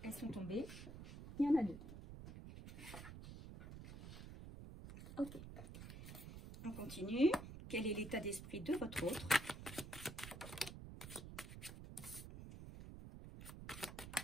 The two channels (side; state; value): right; noise; rumble, 11 dB below the sound